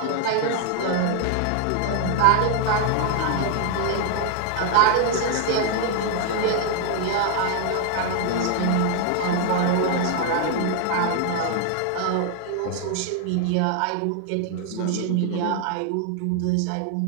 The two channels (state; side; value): different; both; correlation 0.00